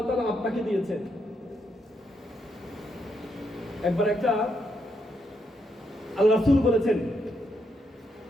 তাআলা আপনাকে দিয়েছেন। একবার একটা আল্লাহ রাসূল বলেছেন,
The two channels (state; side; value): normal; both; correlation 0.79